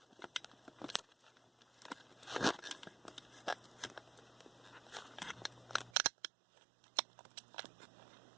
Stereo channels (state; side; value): drops out; left; at 5.9 s